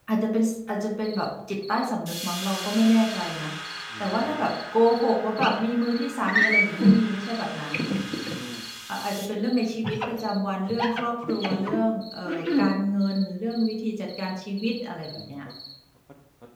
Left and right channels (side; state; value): both; identical; correlation 1.00